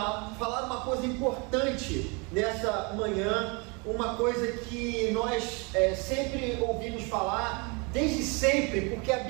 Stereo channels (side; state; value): left; quieter; 30.9 dB